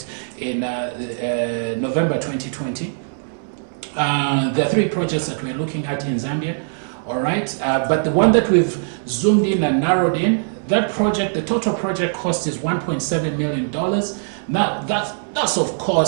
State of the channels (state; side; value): silent; left; 65 dB below the other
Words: in November 2020. There are 3 projects that we're looking at in Zambia, all right? But the one that we've zoomed in and narrowed in, that project, the total project cost is $1.7 million. Now, that's of